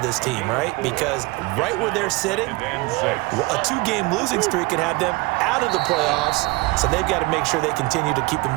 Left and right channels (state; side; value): quieter; left; 23.8 dB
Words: team, right? Because right where they're sitting, a 2-game losing streak could have them out of the playoffs, so they've got to make sure they continue to keep the